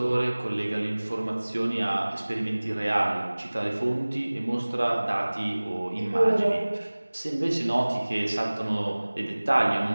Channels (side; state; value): both; inverted; correlation -1.00